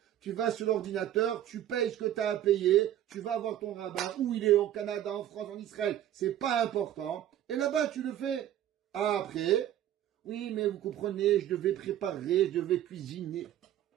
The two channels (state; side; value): quieter; left; 11.8 dB